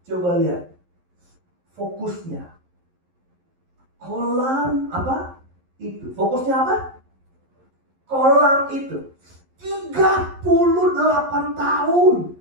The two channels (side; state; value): left; late; 11 ms